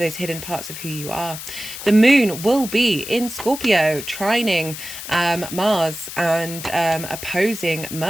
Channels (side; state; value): left; noise; hiss, 10 dB below the sound